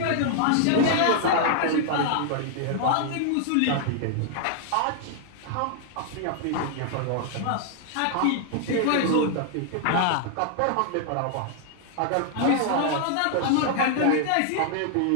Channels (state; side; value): different; both; correlation 0.00